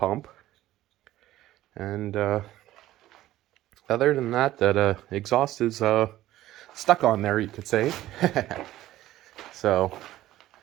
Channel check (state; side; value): quieter; left; 14.8 dB